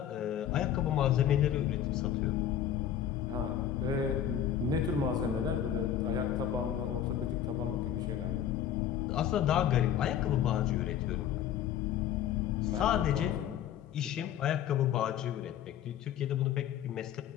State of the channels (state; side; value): quieter; right; 10.0 dB